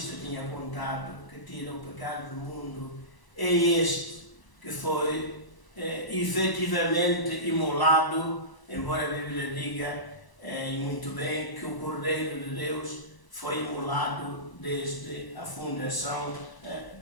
tinha contado, que tira o pecado do mundo. É este que foi efetivamente imolado, embora a Bíblia diga, e muito bem, que o Cordeiro de Deus foi imolado desde a fundação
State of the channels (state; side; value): late; right; 1.0 ms